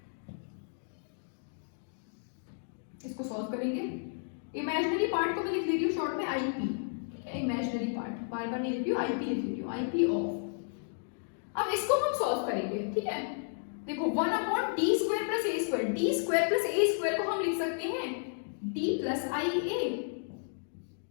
इसको सॉल्व करेंगे, इमेजिनरी पार्ट को मैं लिख ले रही हूँ शॉर्ट में आईपी, इमेजिनरी पार्ट, बार बार नहीं लिख रही हूँ, आईपी लिख रही हूँ, आईपी ऑफ। अब इसको हम सॉल्व करेंगे, ठीक है। देखो 1 upon D square plus A square, D square plus A square को हम लिख सकते हैं D plus I A,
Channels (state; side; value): silent; right; digital silence